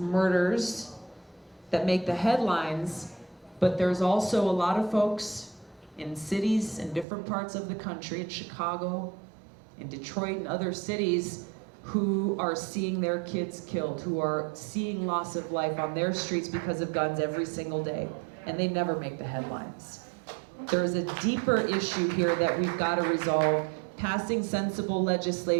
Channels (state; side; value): drops out; left; at 7.1 s